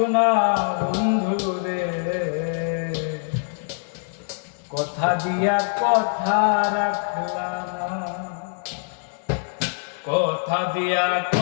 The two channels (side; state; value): right; silent; 63 dB below the other